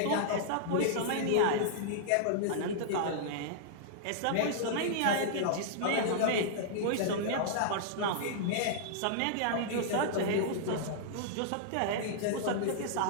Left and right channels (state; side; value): different; both; correlation -0.02